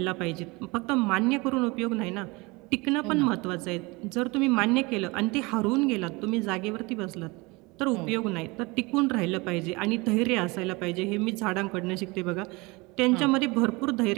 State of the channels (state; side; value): quieter; left; 25.0 dB